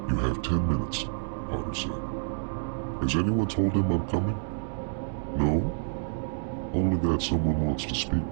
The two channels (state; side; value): silent; left; digital silence